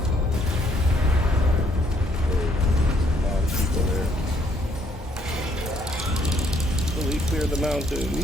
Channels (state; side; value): normal; both; correlation 0.68